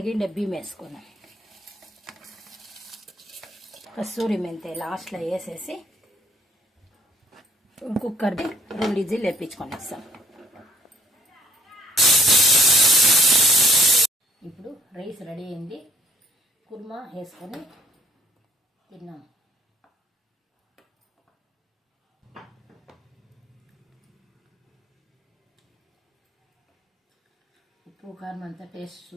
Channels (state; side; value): normal; both; correlation 0.60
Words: బియ్యం వేసుకున్నాం. కస్తూరి మెంతి లాస్ట్లో వేసేసి కుక్కర్ది 2 విజిల్ వేపించుకొనేస్తాం. ఇప్పుడు రైస్ రెడీ అయింది. కుర్మా వేసుకొని తిన్నాం. ఉప్పు కారం అంతా టేస్ట్